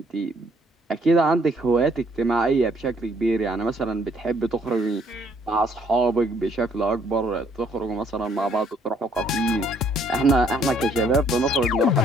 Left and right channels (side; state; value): both; normal; correlation 0.66